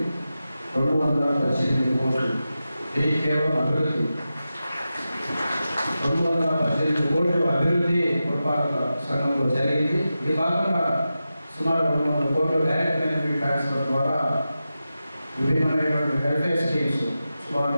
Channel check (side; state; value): both; inverted; correlation -0.92